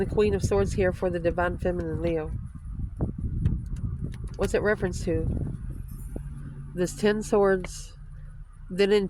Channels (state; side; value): identical; both; correlation 1.00